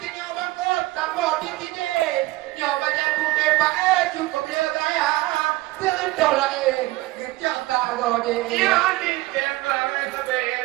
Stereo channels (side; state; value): left; quieter; 19.1 dB